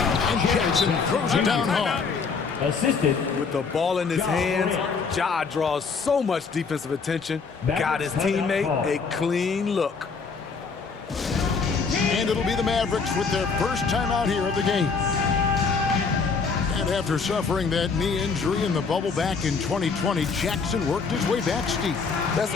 And Jackson throws it down hard. Assisted. With the ball in his hands, Ja draws so much defensive attention. Got his teammate a clean look. And it'll be the Mavericks with their first time out here of the game. And after suffering that knee injury in the bubble back in 2020, Jackson worked his way back steep. That's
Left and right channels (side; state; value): right; quieter; 5.1 dB